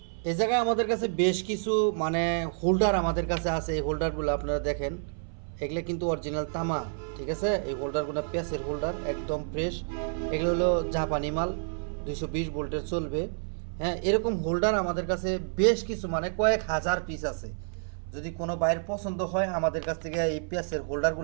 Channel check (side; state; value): left; silent; 59 dB below the other